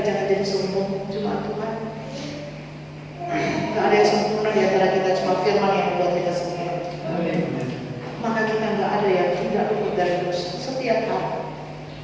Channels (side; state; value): both; identical; correlation 1.00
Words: jangan jadi sombong cuma Tuhan. Tidak ada yang sempurna di antara kita, cuma firman yang membuat kita sempurna. Maka kita nggak ada yang tidak luput dari dosa. Setiap hari